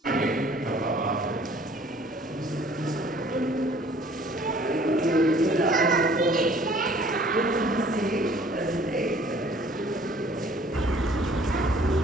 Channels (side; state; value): both; normal; correlation 0.55